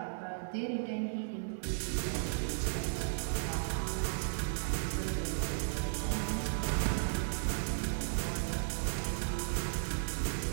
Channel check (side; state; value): left; silent; digital silence